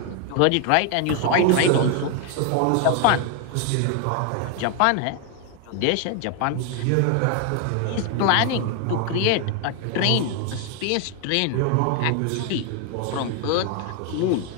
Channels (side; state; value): both; different; correlation 0.01